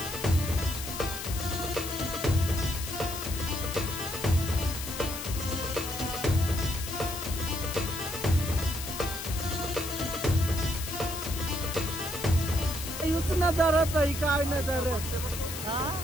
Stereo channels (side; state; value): left; noise; hiss, 7 dB below the sound